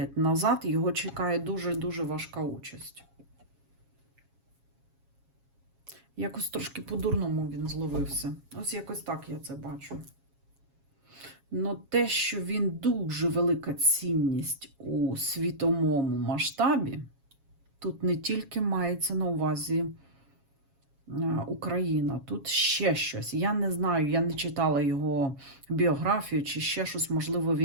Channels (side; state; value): left; late; 7.3 ms